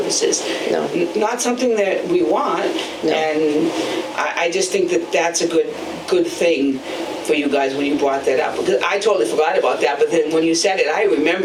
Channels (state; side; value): identical; both; correlation 1.00